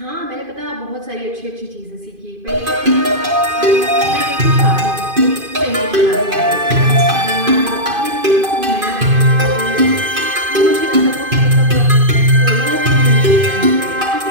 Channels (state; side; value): late; left; 2.5 ms